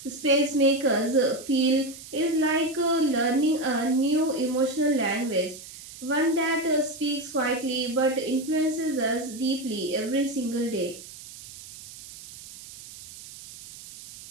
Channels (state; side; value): noise; right; hiss, 16 dB below the sound